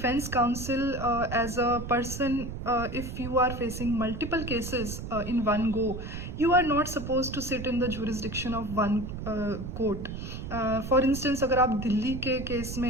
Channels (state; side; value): noise; right; rumble, 7 dB below the sound